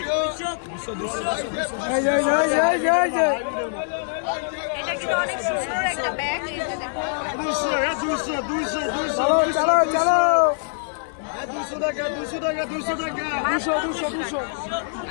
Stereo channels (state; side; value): silent; right; digital silence